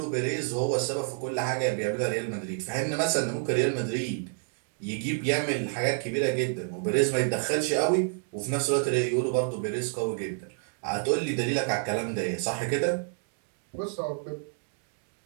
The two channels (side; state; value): left; silent; 56 dB below the other